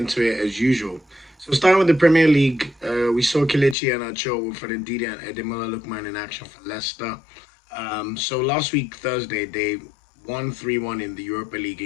it as usual. So starting with the Premier League, we saw Kelechi Iheanacho with Ndidi and Ademola Lookman in action for Leicester. So last week, Thursday, they won 3-1 in the Europa League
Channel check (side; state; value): right; drops out; at 3.8 s